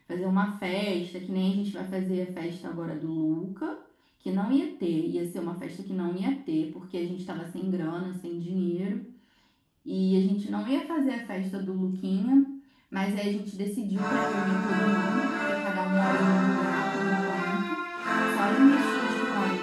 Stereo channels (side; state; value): both; identical; correlation 1.00